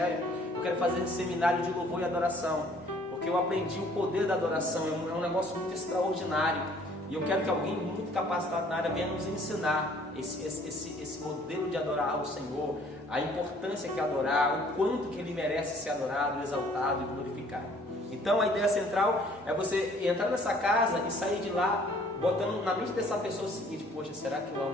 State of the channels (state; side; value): normal; both; correlation 0.57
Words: Eu quero fazer esse seminário de louvor e adoração, porque eu aprendi o poder da adoração, é um negócio muito extraordinário, e eu quero que alguém muito capacitado na área venha nos ensinar esse modelo de adorar ao Senhor, a importância que é adorar, o quanto que Ele merece ser adorado, exaltado e glorificado. Então a ideia central é você entrar nessa casa e sair de lá botando na mente dessa pessoa o seguinte, poxa, será que eu